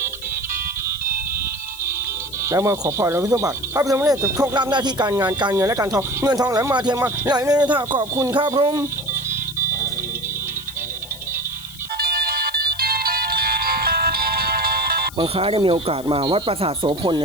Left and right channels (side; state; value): left; noise; hiss, 18 dB below the sound